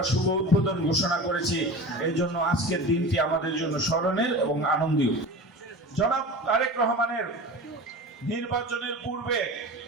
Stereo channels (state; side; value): normal; both; correlation 0.33